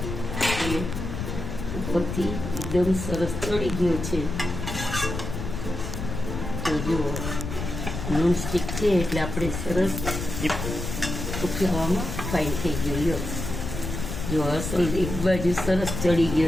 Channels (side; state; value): left; noise; rumble, 5 dB below the sound